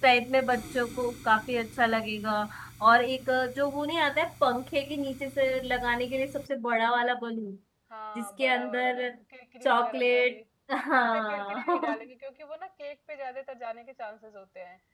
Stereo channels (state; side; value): identical; both; correlation 1.00